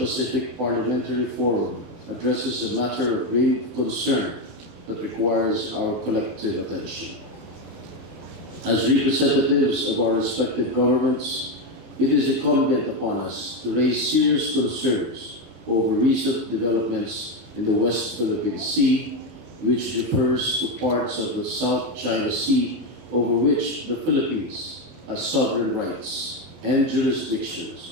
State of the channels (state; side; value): late; left; 20 ms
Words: Parliamentary Forum addresses a matter of grave concern that requires our collective attention. As representatives of our respective governments, it is incumbent upon us to raise serious concerns over recent developments in the West Philippine Sea, which refers to parts of the South China Sea over which the Philippines has sovereign rights and